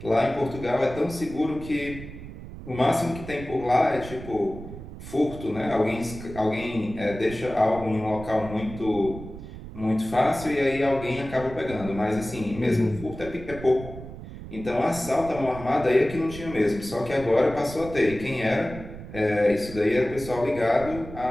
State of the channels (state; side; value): noise; right; rumble, 13 dB below the sound